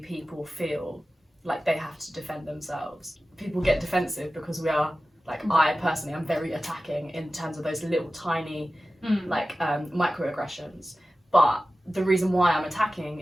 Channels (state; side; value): normal; both; correlation 0.95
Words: feel like they have to defend themselves. People get defensive because we are, like, I personally am very attacking in terms of those little tiny microaggressions. But the reason why I'm attacking